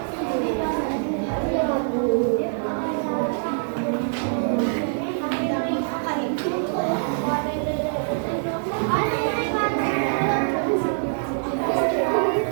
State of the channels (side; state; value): left; silent; digital silence